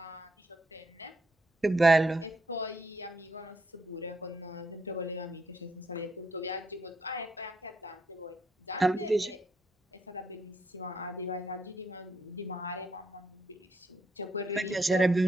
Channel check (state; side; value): normal; both; correlation 0.76